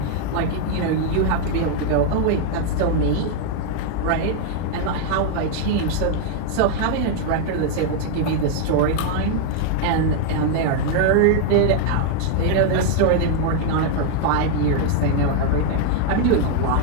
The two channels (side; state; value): both; different; correlation 0.00